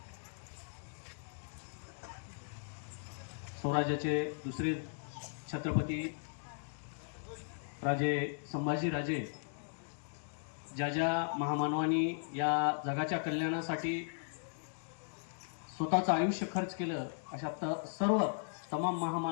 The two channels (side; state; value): right; silent; digital silence